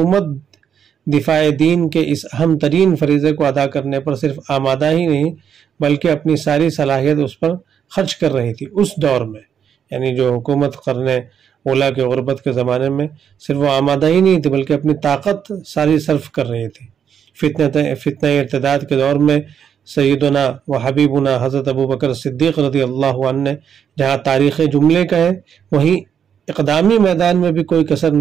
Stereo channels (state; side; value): quieter; left; 8.1 dB